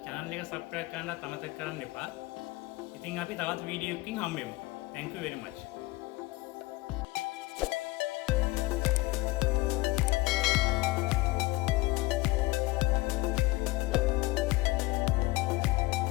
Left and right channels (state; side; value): quieter; right; 20.9 dB